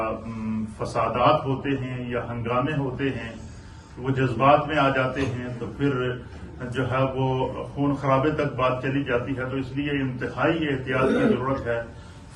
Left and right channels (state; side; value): identical; both; correlation 1.00